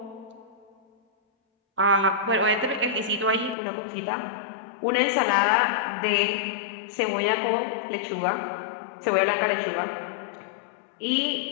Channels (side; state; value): right; drops out; at 3.6 s